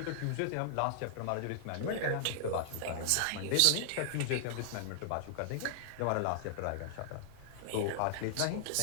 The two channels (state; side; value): different; both; correlation -0.01